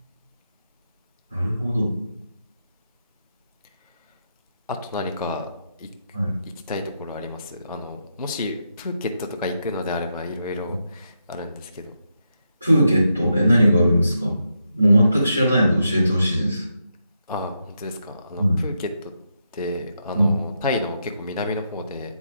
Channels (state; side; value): inverted; both; correlation -0.83